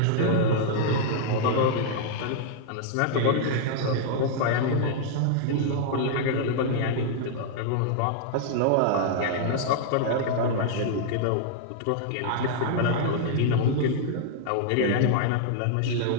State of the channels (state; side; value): different; both; correlation -0.01